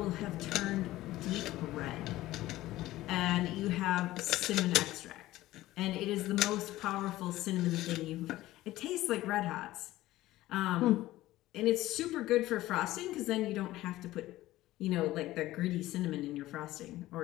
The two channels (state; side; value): quieter; right; 16.3 dB